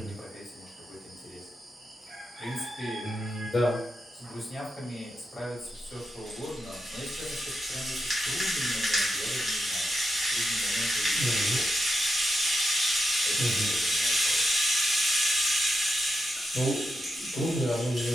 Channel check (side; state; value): both; normal; correlation 0.86